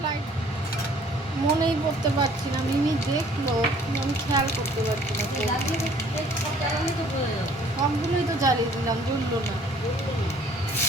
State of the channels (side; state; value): both; normal; correlation 0.57